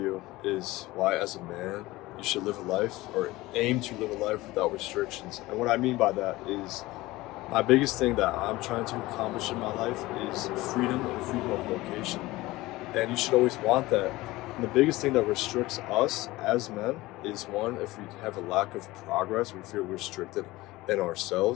is why, as a man, you should live a life or aim to live a life without restrictions. And what I mean by that is my biggest thing that I'm trying to accomplish in my life is freedom and freedom of location. And you should always want that. And the biggest thing that restricts us as men is one, if we have a lack of progress, we feel restricted in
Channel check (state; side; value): quieter; right; 19.1 dB